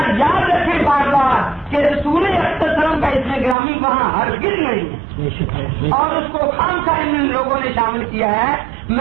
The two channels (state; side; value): drops out; left; at 3.6 s